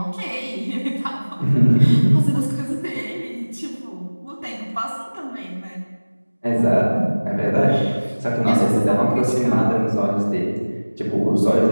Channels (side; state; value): both; inverted; correlation -1.00